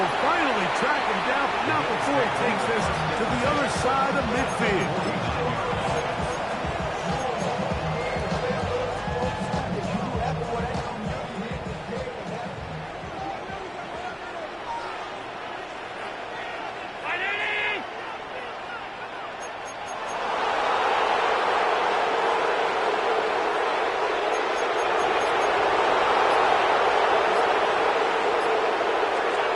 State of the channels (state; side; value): identical; both; correlation 1.00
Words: finally track him down, but not before he takes this to the other side of midfield.